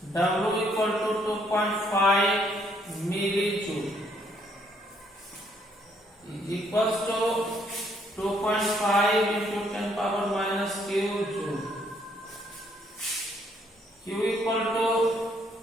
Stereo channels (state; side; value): normal; both; correlation 0.68